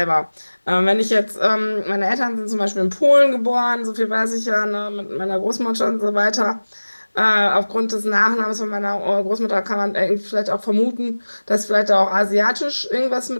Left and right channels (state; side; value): inverted; both; correlation -1.00